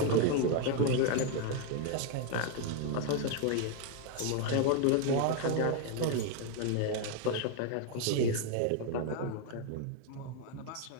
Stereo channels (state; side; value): different; both; correlation 0.01